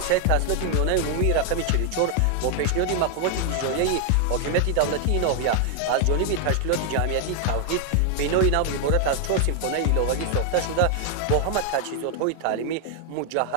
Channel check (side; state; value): both; different; correlation 0.00